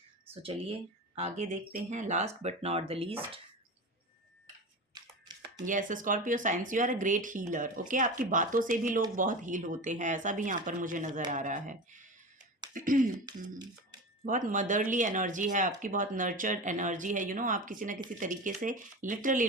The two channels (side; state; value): both; normal; correlation 0.28